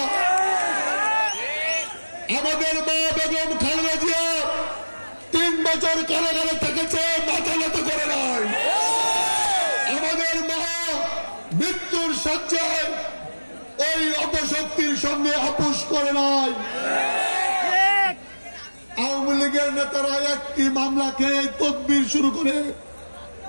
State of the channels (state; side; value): inverted; both; correlation -1.00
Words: আমাদের মা বেগম খালেদা জিয়া 3 বছর কারাগারে থেকেছে, মাথা নত করে নাই। আমাদের মা মৃত্যুর শয্যায় ওই অপশক্তির সঙ্গে আপোষ করে নাই। আওয়ামী লীগের নেতারা একটি মামলাকে তদবির শুরু করে